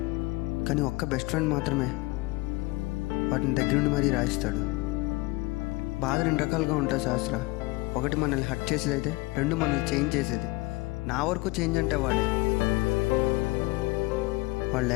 కానీ ఒక్క బెస్ట్ ఫ్రెండ్ మాత్రమే వాటిని దగ్గరుండి మరీ రాయిస్తాడు. బాధ రెండు రకాలుగా ఉంటుంది శాస్త్ర. ఒకటి మనల్ని హర్ట్ చేసేది అయితే, రెండు మనల్ని చేంజ్ చేసేది. నా వరకు చేంజ్ అంటే వాడు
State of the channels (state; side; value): quieter; right; 23.0 dB